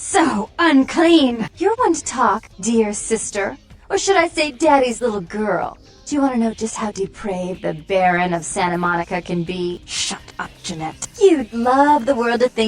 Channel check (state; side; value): identical; both; correlation 1.00